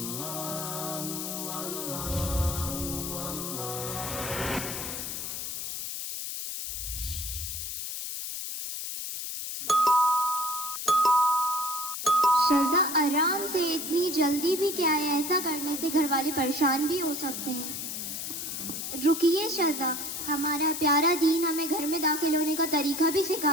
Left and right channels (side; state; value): left; noise; hiss, 5 dB below the sound